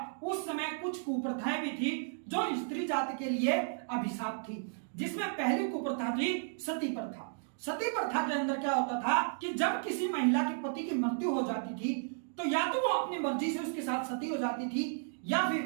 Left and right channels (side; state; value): left; silent; digital silence